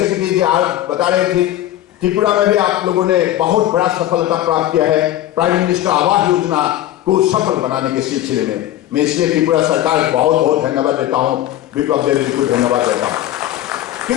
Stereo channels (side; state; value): right; quieter; 13.4 dB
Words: जी आज बता रहे थे, त्रिपुरा में भी आप लोगों ने बहुत बड़ा सफलता प्राप्त किया है प्राइम मिनिस्टर आवास योजना को सफल बनाने के सिलसिले में। मैं इसलिए त्रिपुरा सरकार बहुत बहुत धन्यवाद देता हूं, विप्लव देव जी को धन्यवाद देता हूं,